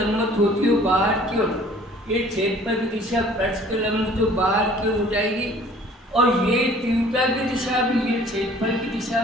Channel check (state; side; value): normal; both; correlation 0.52